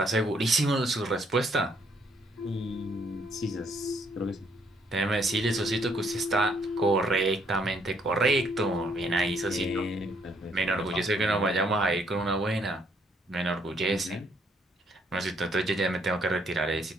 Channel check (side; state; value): both; normal; correlation 0.69